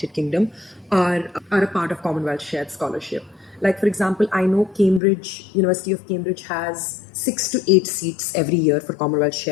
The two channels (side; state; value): right; drops out; at 5.0 s